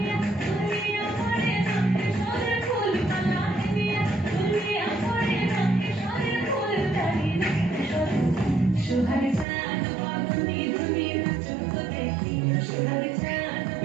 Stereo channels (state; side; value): drops out; left; at 9.5 s